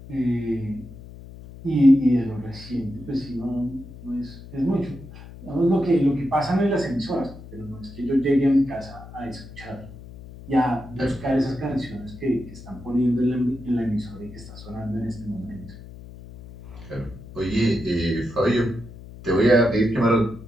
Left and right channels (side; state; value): left; noise; hum, 16 dB below the sound